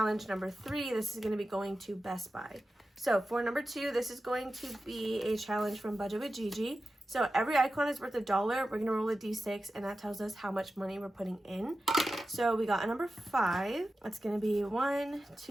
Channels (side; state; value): both; normal; correlation 0.93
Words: number 3, this is going to be going to Best Buy. So for number 2, this is going to be a challenge from Budget with Gigi. So every icon is worth $1. We're going to roll a D6, and that tells us how much money we're putting in. So we got a number 5. That's going to be 1,